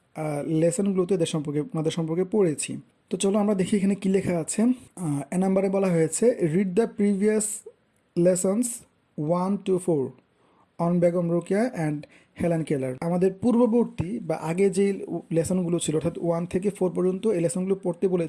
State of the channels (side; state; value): both; identical; correlation 1.00